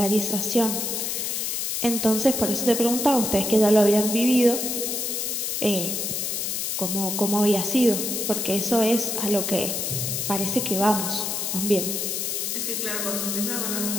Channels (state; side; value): noise; left; hiss, 1 dB below the sound